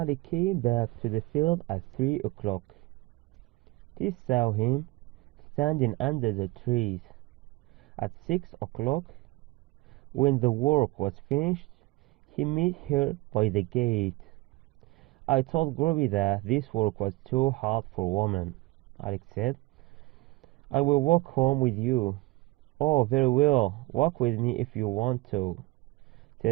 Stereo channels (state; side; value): quieter; left; 21.3 dB